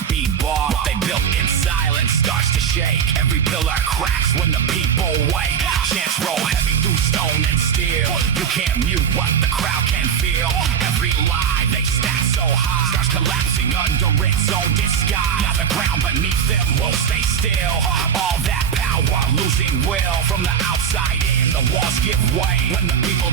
be bought. What they built in silence starts to shake. Every pillar cracks when the people wake. Chants roll heavy through stone and steel. You can't mute what the crowd can feel. Every lie they stack so high starts collapsing under its own disguise. Now the ground beneath them won't stay still. All that power losing will. From the outside in, the walls give way. When the people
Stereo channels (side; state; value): left; quieter; 7.7 dB